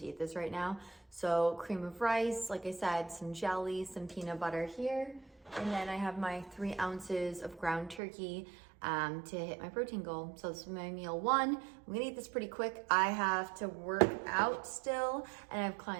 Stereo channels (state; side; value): drops out; left; at 8.0 s